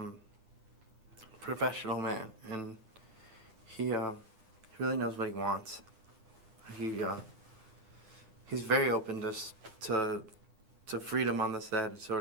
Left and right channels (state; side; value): late; left; 9.9 ms